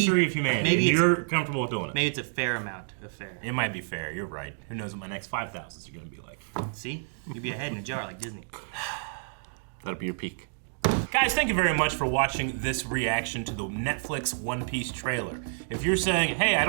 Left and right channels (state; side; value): silent; left; digital silence